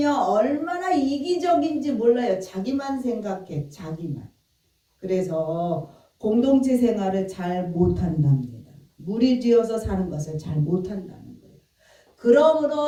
얼마나 이기적인지 몰라요. 자기만 생각해, 자기만. 그래서 공동체 생활을 잘 못한답니다. 무리지어서 사는 것을 잘 못한다는 거예요.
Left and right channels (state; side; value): identical; both; correlation 1.00